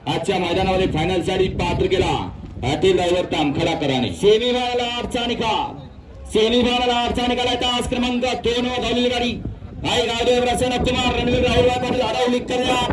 आजच्या मैदानामध्ये फायनल साठी पात्र केला अतिल ड्रायव्हर तामखडाकरांनी। सेमी फायनल 8 चा निकाल सेमी फायनल 8 चा निकाल तास क्रमांक 2 वर धावलेली गाडी आई गावदेव प्रसन्न कुमार रणवीर राहुल पाटील आडवली कल्याण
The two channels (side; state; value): both; identical; correlation 1.00